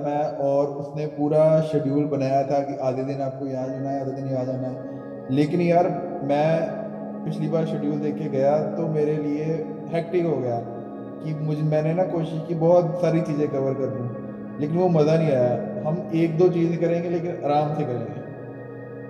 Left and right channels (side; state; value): both; identical; correlation 1.00